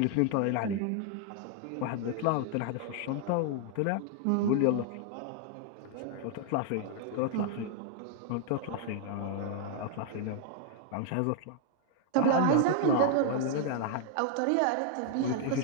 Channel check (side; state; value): both; different; correlation 0.00